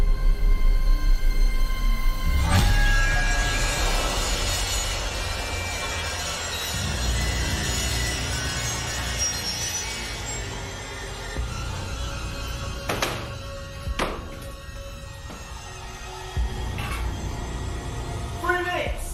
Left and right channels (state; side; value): identical; both; correlation 1.00